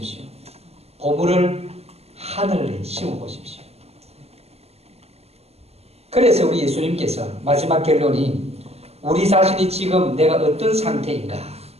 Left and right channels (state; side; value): late; left; 0.30 ms